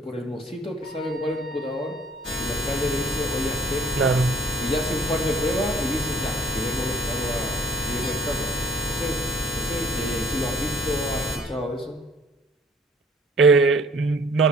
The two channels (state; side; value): normal; both; correlation 0.56